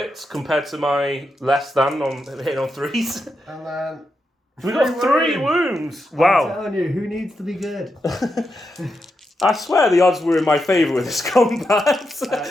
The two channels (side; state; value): both; normal; correlation 0.86